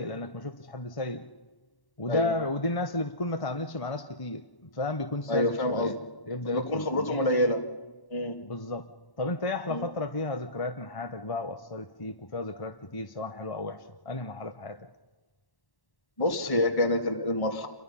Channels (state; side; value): late; right; 1.1 ms